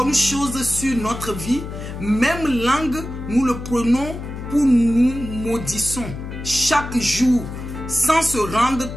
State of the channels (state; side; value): noise; left; hum, 9 dB below the sound